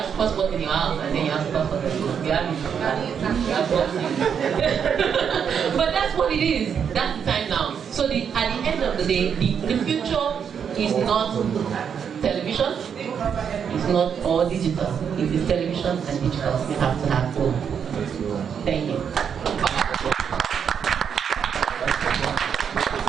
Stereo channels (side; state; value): left; quieter; 7.5 dB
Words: SuperSport in your house and then you have SuperSport on the go, you have But that's what it is. That's the time now. So at the end of the day, the future is not television, it's not all digital. It is television and digital. You have to have both. Thank you.